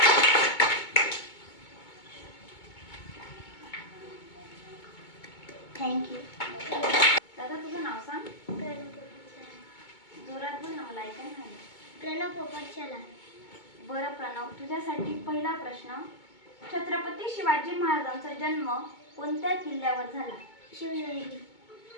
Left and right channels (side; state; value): right; late; 2.2 ms